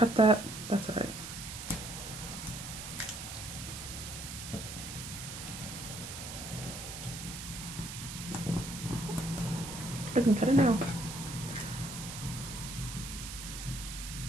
that. That's all right. I can cut it now.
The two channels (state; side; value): noise; right; hiss, 8 dB below the sound